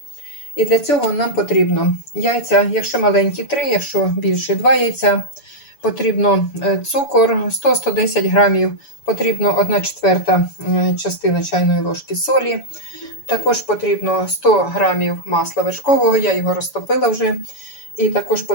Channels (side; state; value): right; late; 7.0 ms